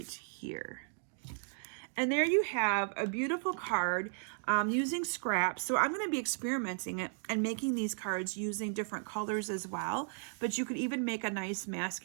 here. And there you have a beautiful card using scraps. So I'm going to be experimenting it and making these cards using different colors as well. But you could even make a nice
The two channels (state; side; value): silent; left; 54 dB below the other